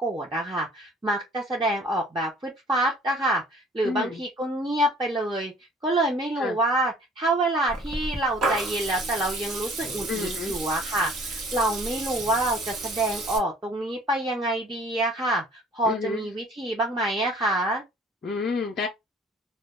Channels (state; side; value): normal; both; correlation 0.52